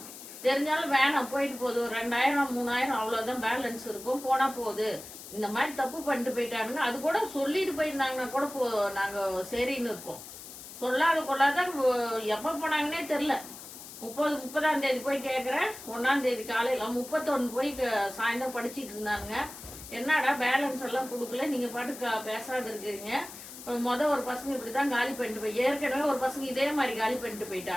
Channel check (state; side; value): noise; left; hiss, 14 dB below the sound